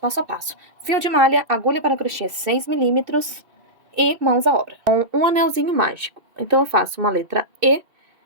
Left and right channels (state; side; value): late; left; 2.6 ms